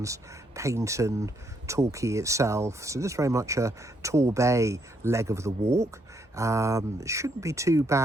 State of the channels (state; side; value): normal; both; correlation 0.74